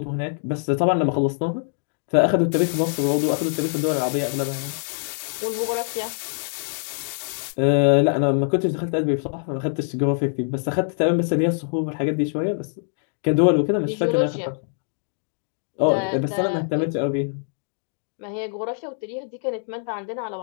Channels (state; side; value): silent; right; digital silence